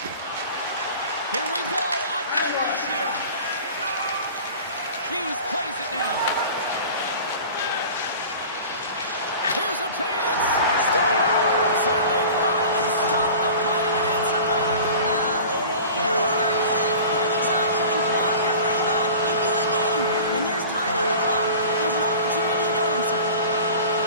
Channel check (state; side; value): inverted; both; correlation -0.39